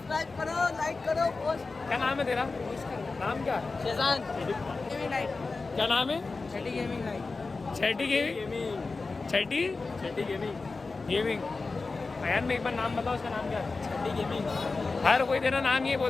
करो, लाइक करो, पोस्ट। क्या नाम है तेरा? नाम क्या? Schezwan gaming night. क्या नाम है? छठी गेमिंग नाइट। छठी गेमिंग। छठी छठी गेमिंग। गेमिंग। अयान में एक बार नाम बताओ, उसका नाम क्या है? छठी गेमिंग। हर कोई तेरा नाम ये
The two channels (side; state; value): right; quieter; 3.9 dB